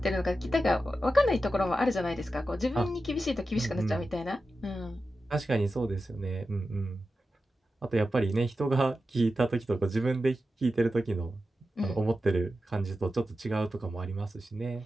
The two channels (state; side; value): normal; both; correlation 0.91